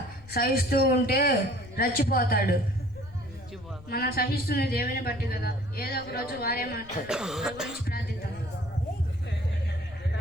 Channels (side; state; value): left; noise; rumble, 19 dB below the sound